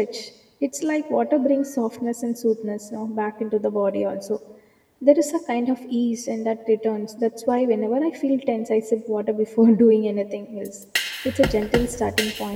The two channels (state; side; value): identical; both; correlation 1.00